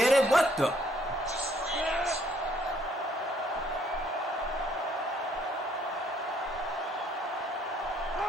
it? What the?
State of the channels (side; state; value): both; normal; correlation 0.65